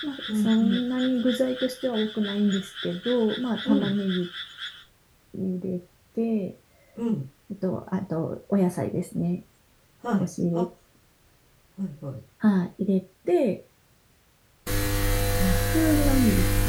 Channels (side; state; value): both; identical; correlation 1.00